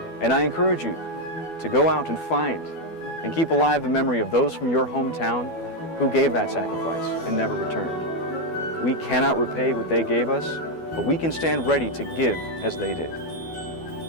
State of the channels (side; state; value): right; late; 12 ms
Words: And I encourage you to go out and find and keep alive the memory of those from your hometown who gave that sacrifice and never returned. We cannot repay what they gave us, but we can stand ready to give as they did.